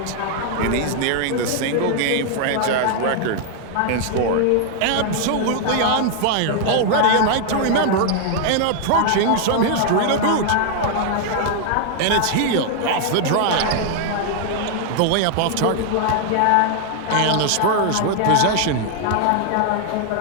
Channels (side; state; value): both; different; correlation 0.00